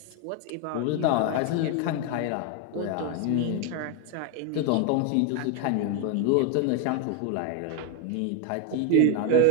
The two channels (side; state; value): both; different; correlation 0.01